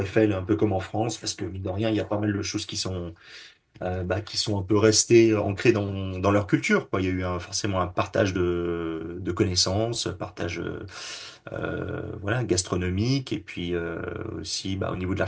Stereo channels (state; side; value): identical; both; correlation 1.00